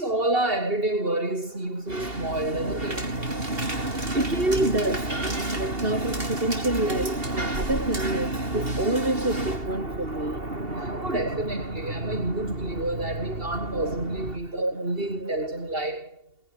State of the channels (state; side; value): late; left; 2.8 ms